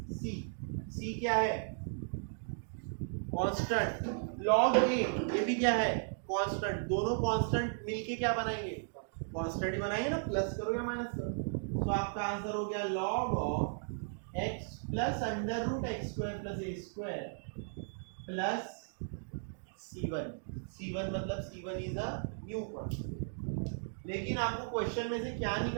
c. C क्या है, कांस्टेंट, लॉग ए ये भी क्या है, कांस्टेंट। दोनों कांस्टेंट मिलके क्या बनाएंगे, कांस्टेंट ही बनाएंगे ना, प्लस करो या माइनस करो। तो आपका आंसर हो गया log of x plus under root x square plus a square plus C1 मतलब C1 is a new constant. लेकिन आपको क्वेश्चन में से क्या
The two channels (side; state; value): left; silent; digital silence